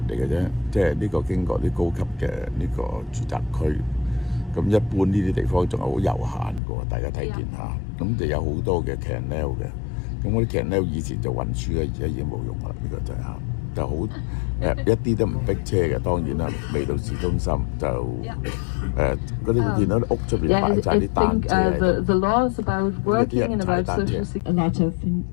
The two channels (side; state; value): right; drops out; at 6.6 s